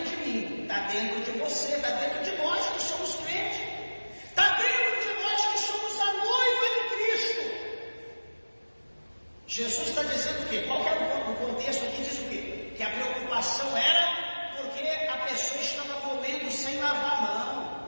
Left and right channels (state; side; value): inverted; both; correlation -1.00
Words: de mim, está dentro de você, está dentro de nós que somos crentes, está dentro de nós que somos a noiva de Cristo. Jesus está dizendo o quê? Qual que é o contexto aqui? Diz o quê? Que a preocupação era porque a pessoa estava comendo sem lavar a mão.